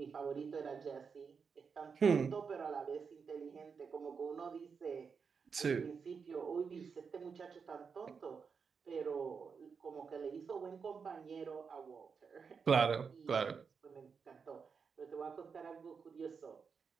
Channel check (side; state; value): left; quieter; 5.8 dB